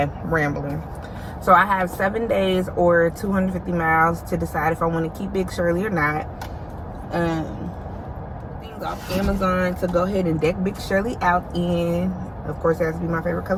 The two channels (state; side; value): identical; both; correlation 1.00